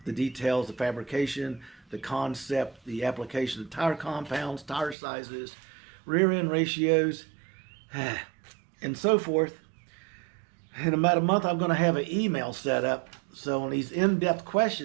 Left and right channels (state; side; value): drops out; left; at 5.0 s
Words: The details, the fabrication, the concept, the application of tire compounds, tire sizes, rear end ratios, and so forth. In about a month, I'm going to have an email set up. So on these in-depth